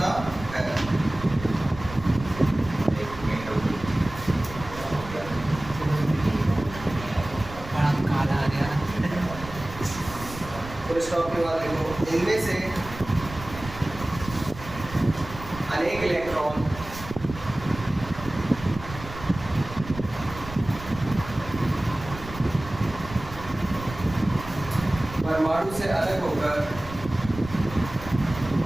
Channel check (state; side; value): noise; right; rumble, 13 dB below the sound